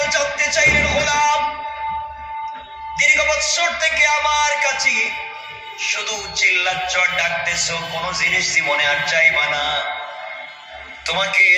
জানতে চাইলেন, গোলাম দীর্ঘ বছর থেকে আমার কাছে শুধু চিল্লাচ্ছ, ডাকতেছো, কোন জিনিস জীবনে আর চাইবা না, তোমাকে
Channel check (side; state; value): both; identical; correlation 1.00